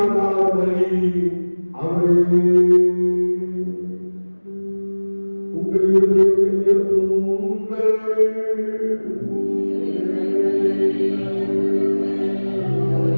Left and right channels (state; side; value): inverted; both; correlation -1.00